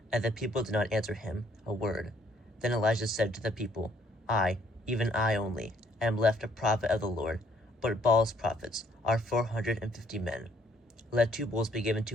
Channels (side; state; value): both; normal; correlation 0.66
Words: And the people did not answer him a word. Then Elijah said to the people, I, even I only, am left a prophet of the Lord, but Baal's prophets are 450 men. Let 2 bulls be given